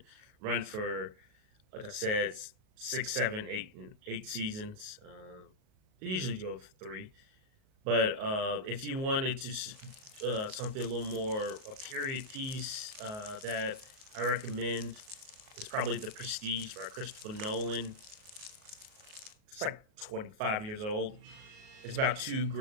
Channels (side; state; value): left; late; 38 ms